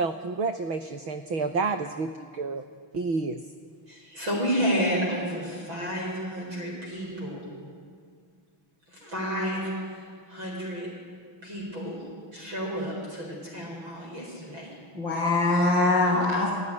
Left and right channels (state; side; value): late; left; 6.1 ms